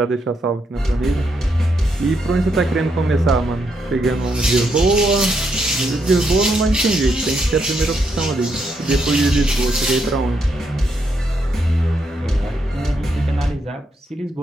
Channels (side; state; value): both; normal; correlation 0.78